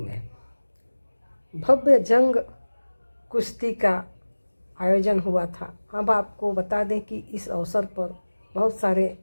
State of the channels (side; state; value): both; inverted; correlation -1.00